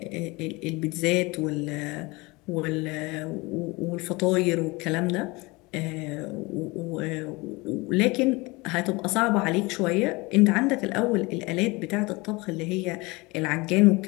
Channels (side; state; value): right; quieter; 24.4 dB